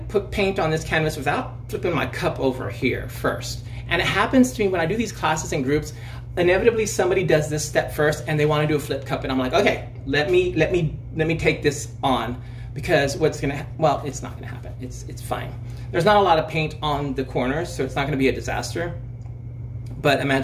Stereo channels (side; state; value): both; identical; correlation 1.00